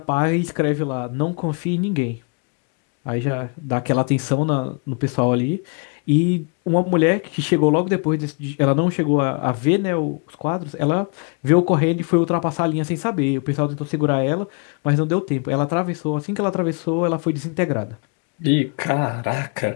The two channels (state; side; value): quieter; right; 35.4 dB